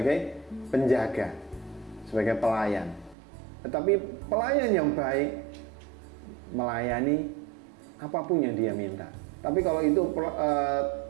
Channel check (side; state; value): left; drops out; at 3.2 s